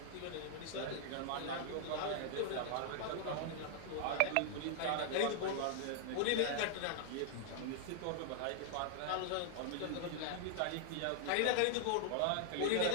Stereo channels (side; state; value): both; different; correlation -0.01